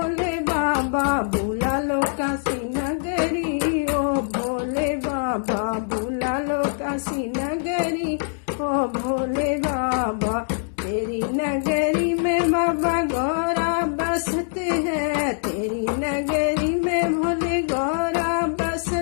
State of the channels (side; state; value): right; silent; digital silence